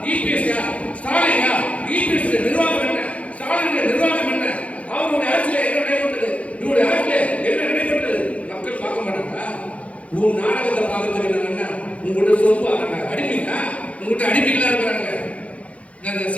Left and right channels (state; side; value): late; right; 0.065 ms